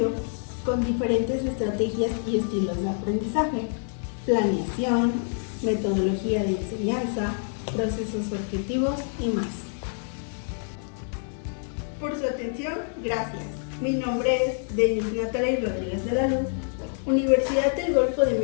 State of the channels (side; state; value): right; silent; 60 dB below the other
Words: con diferentes estrategias y estilos de aprendizaje, planeación, metodología de enseñanza, procesos objetivos y más. Por su atención, gracias. Mi nombre es Denise Natalia Rodríguez de la Luz, Universidad del Golfo de